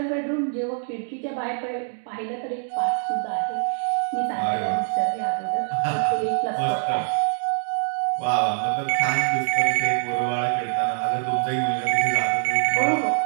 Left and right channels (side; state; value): left; silent; 57 dB below the other